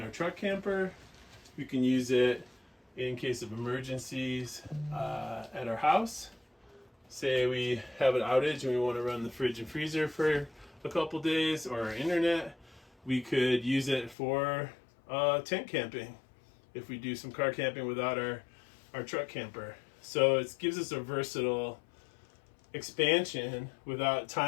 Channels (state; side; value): drops out; right; at 14.2 s